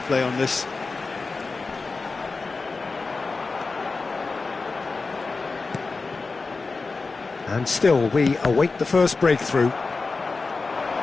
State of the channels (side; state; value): right; quieter; 4.0 dB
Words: on this. And still, we await the first breakthrough.